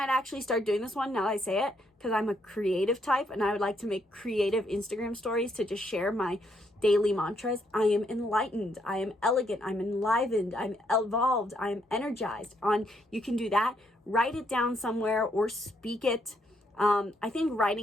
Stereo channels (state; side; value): normal; both; correlation 0.74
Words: actually start doing this one now that I say it, because I'm a creative type and I would like to make creative Instagram stories to just share my daily mantras. I am enlightened. I am elegant. I'm enlivened. I'm evolved. I am energized. You can do that. Write it down somewhere or speak it. I think